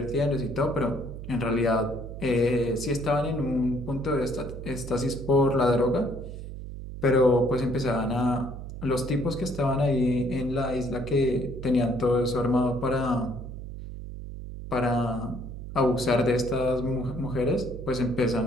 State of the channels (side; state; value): right; noise; hum, 10 dB below the sound